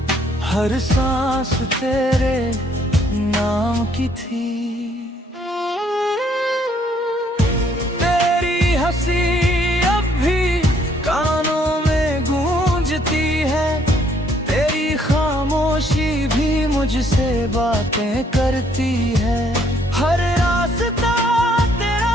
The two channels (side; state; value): both; normal; correlation 0.66